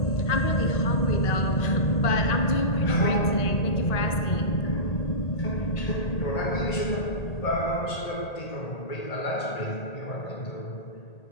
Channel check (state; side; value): late; right; 1.8 ms